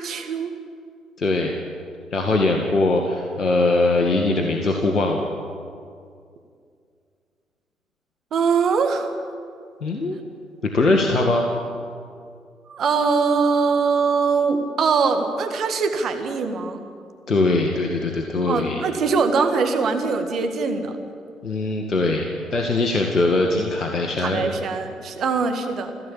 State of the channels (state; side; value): normal; both; correlation 0.68